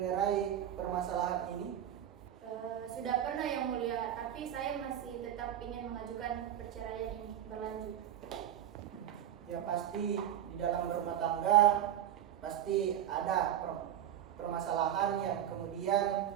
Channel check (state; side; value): quieter; left; 10.9 dB